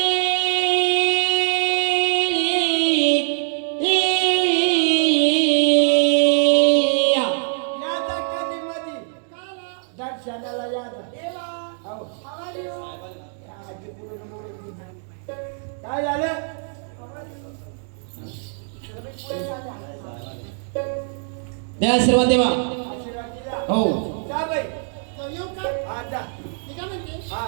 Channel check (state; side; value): silent; left; 64 dB below the other